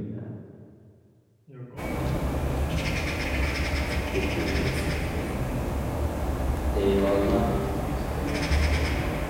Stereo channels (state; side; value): identical; both; correlation 1.00